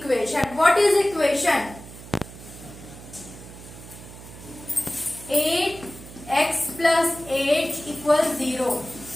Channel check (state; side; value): noise; right; hum, 16 dB below the sound